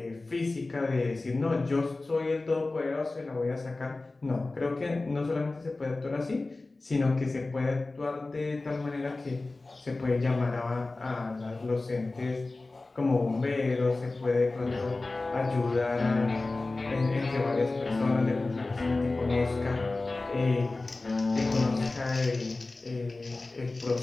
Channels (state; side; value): quieter; right; 3.3 dB